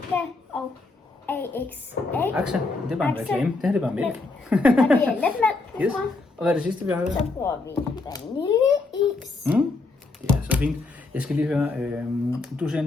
og AXA. Aksa, det er bare en Aksa. reklame. Det her det er bare mælk. Og det er letmælk, vi Yes. bruger. Og hvad er det sidste, vi har her? Så bruger vi vaniljeis. Det er så fint. Jeg skal lige høre, du ser en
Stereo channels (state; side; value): quieter; right; 3.6 dB